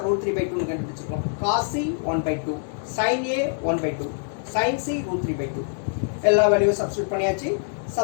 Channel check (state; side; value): silent; right; 62 dB below the other